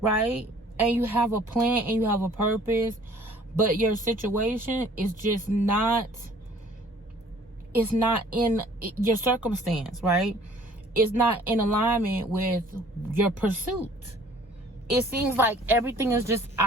And you have a plan and you have a purpose, but your situation is just not, it's not in your circumstance, right? It's not in alignment with your pursuit. It seems like everything is just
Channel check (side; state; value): both; normal; correlation 0.54